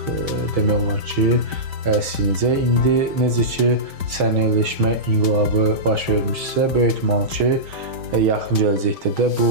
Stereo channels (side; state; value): left; late; 5.1 ms